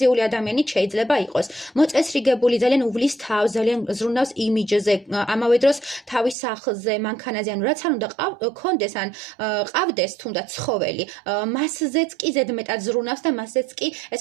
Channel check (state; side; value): drops out; left; at 6.4 s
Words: ადამიანი შეიძლება იყოს. მოწესრიგებული, ძალიან უვლის თავს, ძალიან ზრუნავს იმიჯზე, ამავე დროს თავის სახლზე, მანქანაზე, ანუ რაც არ უნდა კონდეს, ან ყავდეს თუნდაც ცხოველი, მასზეც კი ზედმეტად ზრუნავს და მასზეც კი,